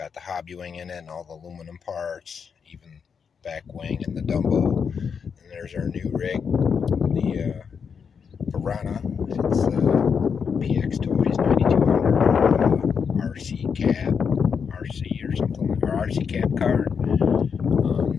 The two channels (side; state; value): right; quieter; 6.4 dB